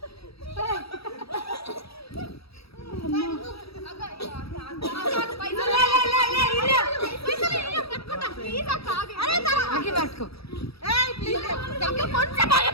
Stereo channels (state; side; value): late; right; 0.77 ms